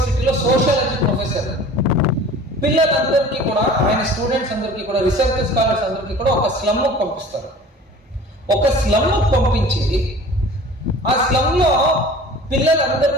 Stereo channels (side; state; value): both; normal; correlation 0.44